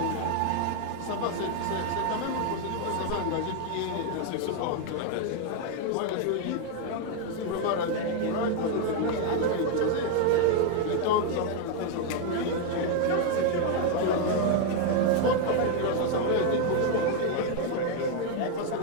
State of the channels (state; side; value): different; both; correlation 0.01